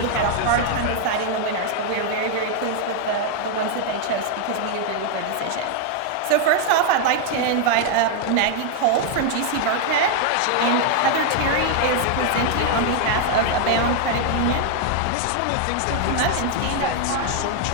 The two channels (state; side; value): different; both; correlation 0.00